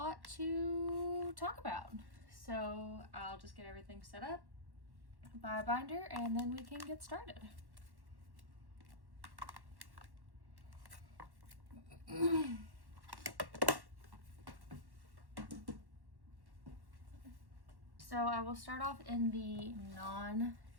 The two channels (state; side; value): late; left; 1.1 ms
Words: to talk about. So I'll just get everything set up by a binder and then we can get started. So I will start off in the